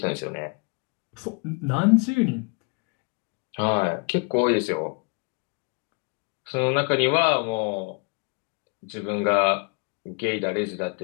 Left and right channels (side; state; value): right; quieter; 34.3 dB